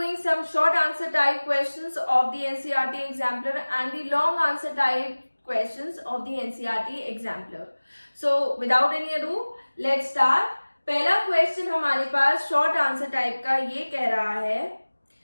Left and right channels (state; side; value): inverted; both; correlation -1.00